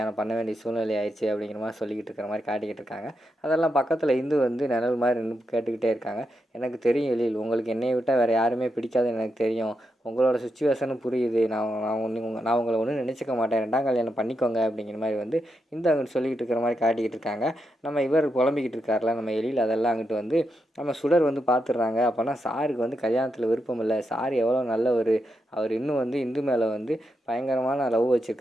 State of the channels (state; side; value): normal; both; correlation 0.84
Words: பண்ண வேண்டிய சூழ்நிலை ஆயிடுச்சு." அப்படிங்கிற மாரி சொல்லிக்கிட்டு இருக்கிற மாரி காட்டிக்கிட்டு இருக்காங்க. அதெல்லாம் பக்கத்துல இந்து வந்து நிழல் மாரி நின்னு கேட்டுக்கிட்டே இருக்காங்க. "எனக்கு தெரியும் எழில், உங்களுக்கு என்னைய விட்டா வேற யாருமே பிடிக்காதுன்னு எனக்கு தெரியும். உங்களோட சிச்சுவேஷனும் புரியுது. நான் உங்கள ஒண்ணும் நினைச்சுக்க மாட்டேன். 2ஆம் கல்யாணம் பண்ணிக்கோங்க." அப்படிங்கிற மாரி வந்து இந்து அங்கிட்டு சொல்லிக்கிட்டு இருக்கிற மாரி காட்டிக்கிட்டு இருக்காங்க. நம்ம இவர் புலம்பிக்கிட்டு இருக்கார்ல நம்ம எழில், அதெல்லாம் அங்கிட்டு வந்து நம்ம சுடர் வந்து பார்த்துடுறாங்க. அப்போனா சாருக்கு வந்து கல்யாணத்தில் விருப்பம் இல்லை. சார் எவ்வளோ நல்லவர். அவர் இன்னும் வந்து இந்து மேலே வந்து பயங்கரமான லவ்